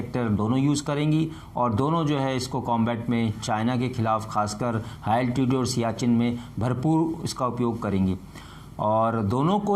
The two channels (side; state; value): both; identical; correlation 1.00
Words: दोनों यूज़ करेंगी और दोनों जो है इसको कॉम्बैट में चाइना के खिलाफ, खासकर हाई एल्टीट्यूड और सियाचिन में भरपूर इसका उपयोग करेंगी। और दोनों को